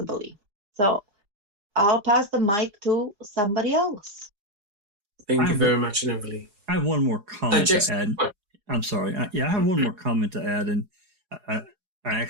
believe. So I'll pass the mic to somebody else. Thank you very much, Neverly. I have one more comment to add. What? I'm sorry. I have one more comment to add, and I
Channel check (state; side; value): late; left; 4.8 ms